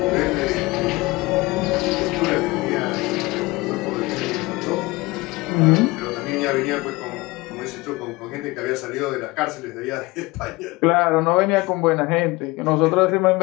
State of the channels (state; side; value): quieter; right; 22.3 dB